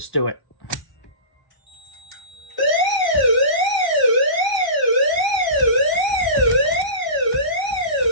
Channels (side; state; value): right; late; 1.0 ms